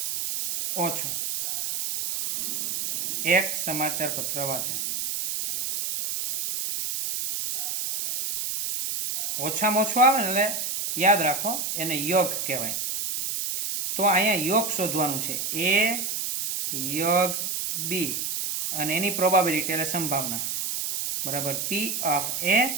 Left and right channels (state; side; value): noise; right; hiss, 2 dB below the sound